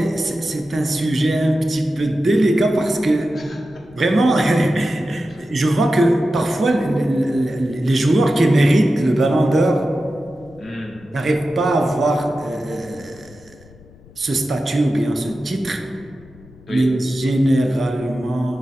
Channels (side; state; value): left; noise; rumble, 24 dB below the sound